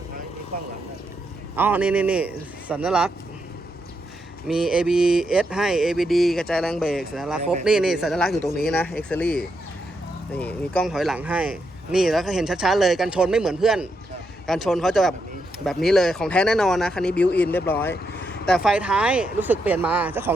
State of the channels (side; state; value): both; normal; correlation 0.81